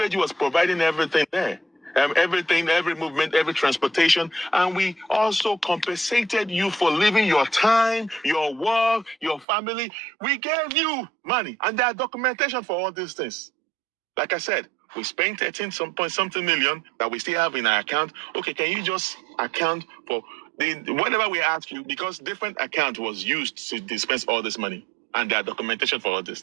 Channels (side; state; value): left; drops out; at 9.5 s